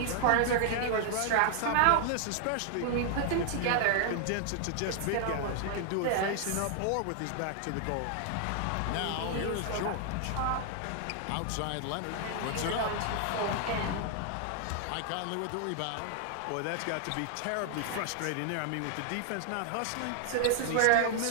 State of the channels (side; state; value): both; different; correlation 0.00